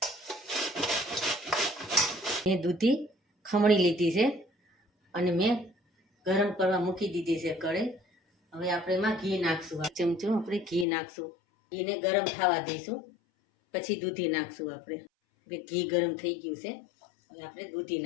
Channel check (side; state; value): right; drops out; at 10.9 s